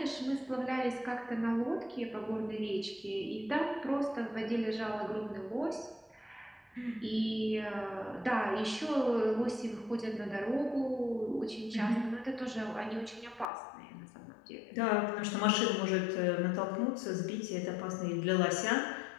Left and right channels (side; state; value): right; drops out; at 13.5 s